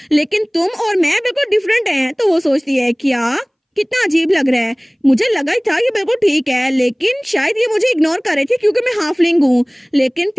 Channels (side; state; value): both; identical; correlation 1.00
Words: लेकिन तुम और मैं बिल्कुल डिफरेंट हैं। तो वो सोचती है क्या कितना अजीब लग रहा है, मुझे लगा ही था ये बिल्कुल ठीक है, लेकिन शायद ये मुझे इग्नोर कर रहे थे क्योंकि मैं हाफलिंग हूँ, लेकिन